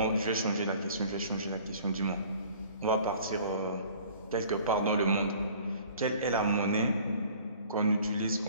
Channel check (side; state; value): both; inverted; correlation -0.50